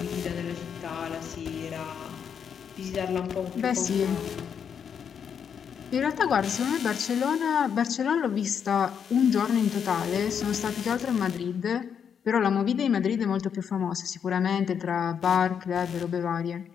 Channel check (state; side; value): quieter; right; 7.5 dB